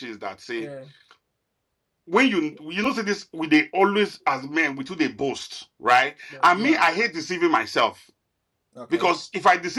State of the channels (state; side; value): identical; both; correlation 1.00